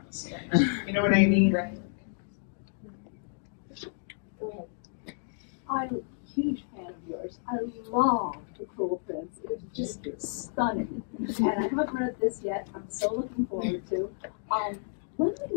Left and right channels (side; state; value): right; silent; digital silence